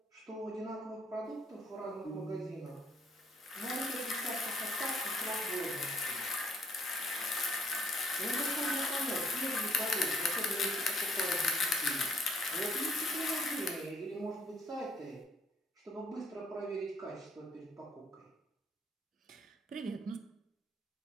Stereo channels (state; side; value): normal; both; correlation 0.66